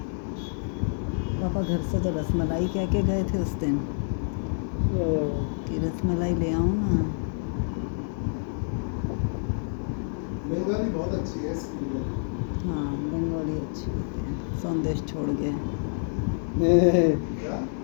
पापा घर से तो रसमलाई कह के गए थे उस दिन कि रसमलाई ले आऊं ना। बंगाली बहुत अच्छी है इसकी लिए। हाँ बंगाली अच्छी होती है। संदेश छोड़ गए। क्या?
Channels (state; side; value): silent; right; digital silence